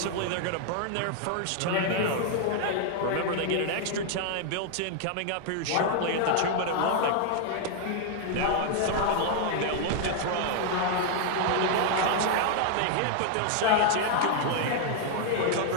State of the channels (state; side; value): different; both; correlation 0.00